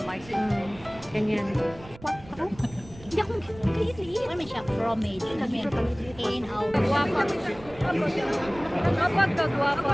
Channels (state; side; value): noise; right; rumble, 20 dB below the sound